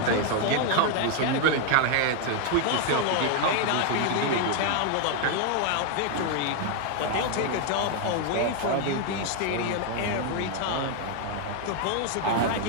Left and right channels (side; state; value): both; different; correlation 0.00